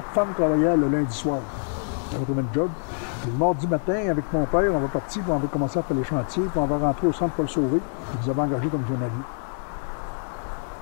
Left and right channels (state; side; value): silent; right; 62 dB below the other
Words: femmes travaillaient le lundi soir. On avait trouvé un job. Puis le mardi matin, avec mon père, on va partir, puis on va commencer à faire les chantiers, puis on va rentrer au centre Paul-Sauvé, puis ils avaient engagé comme journalier.